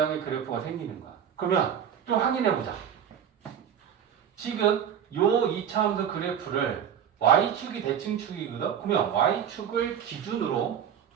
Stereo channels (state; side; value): quieter; left; 8.7 dB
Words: 그래프가 생기는 거야. 그러면 좀 확인해 보자. 지금 요 2차 함수 그래프를 y축이 대칭축이거든. 그러면 y축을 기준으로